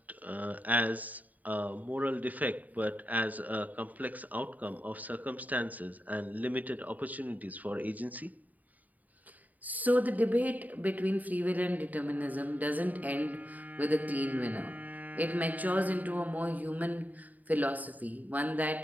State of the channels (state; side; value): late; left; 0.078 ms